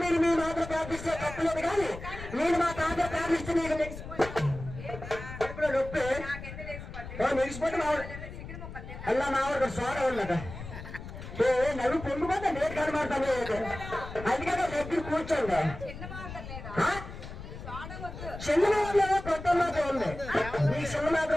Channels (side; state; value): left; noise; rumble, 11 dB below the sound